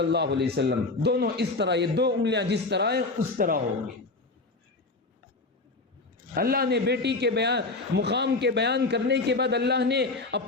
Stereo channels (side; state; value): right; quieter; 3.4 dB